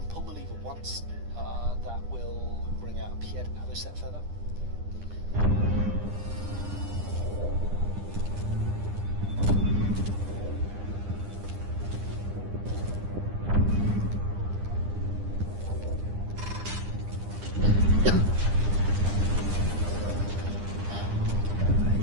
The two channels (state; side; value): late; left; 9.9 ms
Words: pull the lever once. That will bring out a Pied Avocet feather.